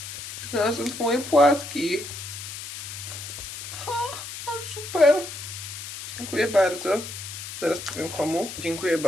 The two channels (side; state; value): left; noise; hiss, 9 dB below the sound